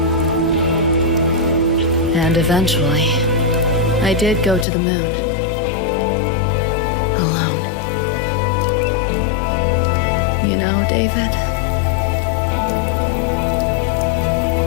And eventually, I did go to the moon. Alone. You know, David?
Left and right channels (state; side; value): drops out; right; at 4.7 s